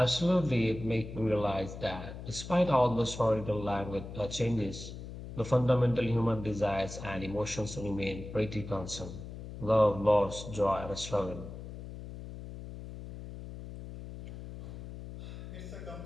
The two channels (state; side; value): noise; left; hum, 11 dB below the sound